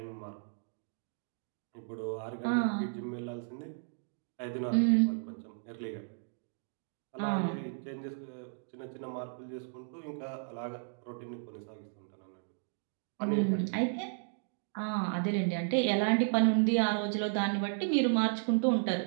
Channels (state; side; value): silent; left; digital silence